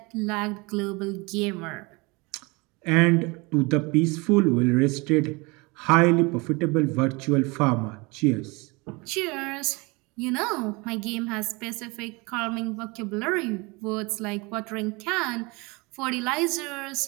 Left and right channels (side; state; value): left; quieter; 26.5 dB